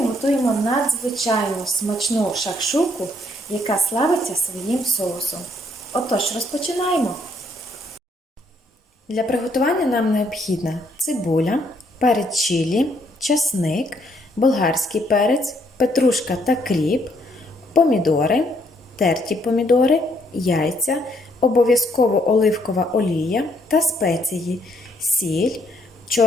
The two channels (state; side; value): normal; both; correlation 0.70